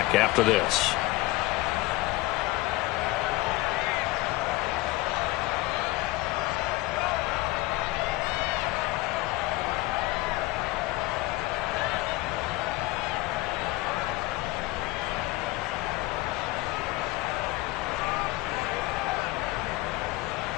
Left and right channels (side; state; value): right; quieter; 19.6 dB